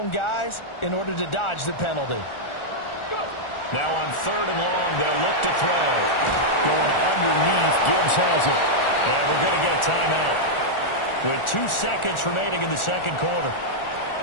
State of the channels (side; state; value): right; late; 1.4 ms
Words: guys in order to dodge the penalty. Now on third and long, they'll look to throw. Going underneath, Gibbs has it. And we're going to get a timeout with 2 seconds remaining in the second quarter.